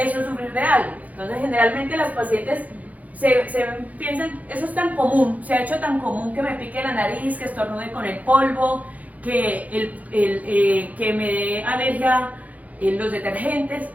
es sufrir de algo. Entonces, generalmente las pacientes se piensan, eso es tan común, se ha hecho tan común que me pique la nariz, que estornude con el polvo, que me dé alergia en los detergentes,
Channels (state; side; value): late; left; 0.075 ms